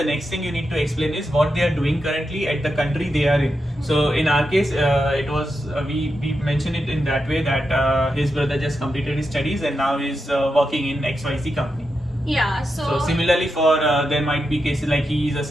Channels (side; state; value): both; normal; correlation 0.87